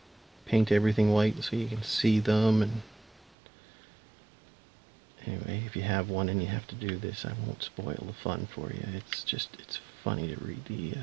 paint everything white so you can see them. And anyway, if you have one and you have to do this, I won't spoil the fun for you. It's funny to read the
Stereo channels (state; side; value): drops out; left; at 3.4 s